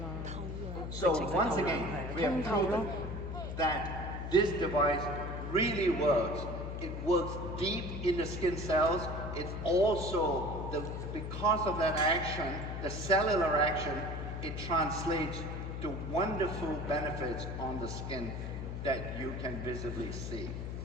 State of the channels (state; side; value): noise; left; hum, 5 dB below the sound